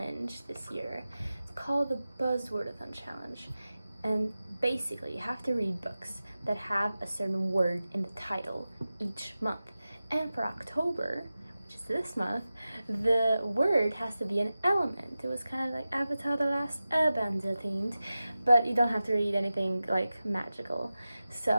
this year. It's called the Buzzwordathon Challenge, and basically you have to read books that have a certain word in the title each month. And for October, which is this month, the word has to be an element. It was kind of like Avatar: The Last Airbender themed, but you don't have to read anything like magical.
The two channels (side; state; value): both; inverted; correlation -0.95